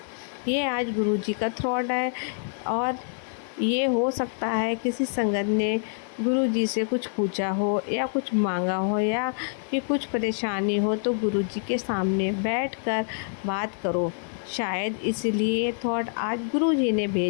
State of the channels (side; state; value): right; silent; 56 dB below the other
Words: ये आज गुरु जी का थॉट है। और ये हो सकता है किसी संगत ने गुरु जी से कुछ पूछा हो या कुछ मांगा हो या कि कुछ परेशानी हो, तो गुरु जी के सामने बैठकर बात करो। शायद इसलिए थॉट आज गुरु जी ने